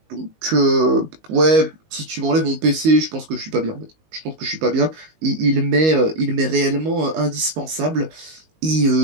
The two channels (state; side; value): late; left; 19 ms